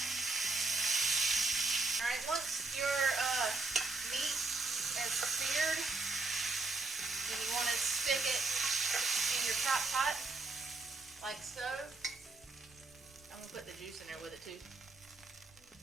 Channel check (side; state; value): left; quieter; 3.6 dB